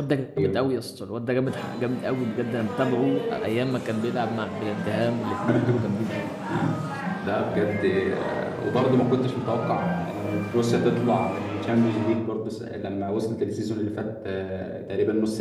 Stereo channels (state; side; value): identical; both; correlation 1.00